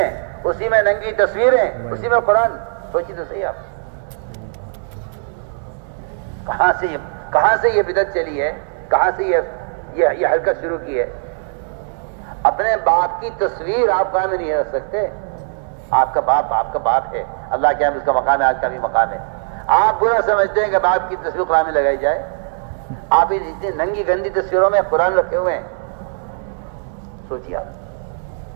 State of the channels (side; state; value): left; silent; digital silence